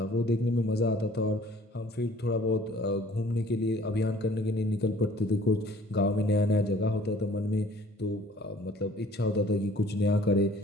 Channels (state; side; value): normal; both; correlation 0.53